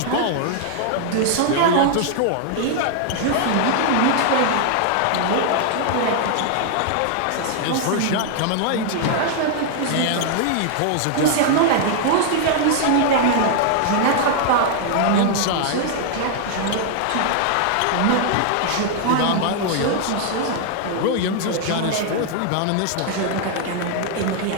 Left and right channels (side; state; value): both; different; correlation 0.00